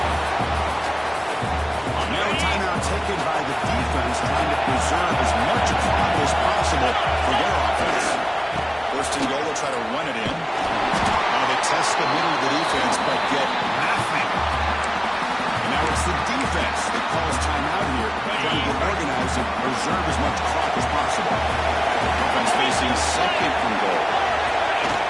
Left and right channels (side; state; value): both; identical; correlation 1.00